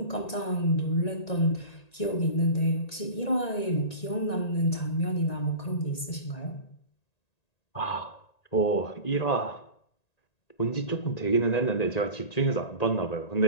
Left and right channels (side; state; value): right; late; 1.9 ms